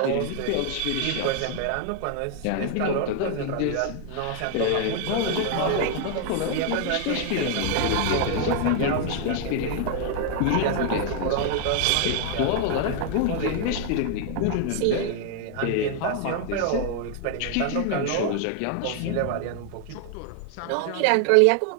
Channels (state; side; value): different; both; correlation 0.00